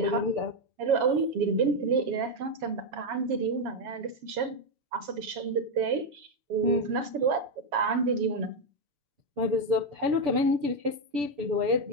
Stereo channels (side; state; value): left; late; 6.9 ms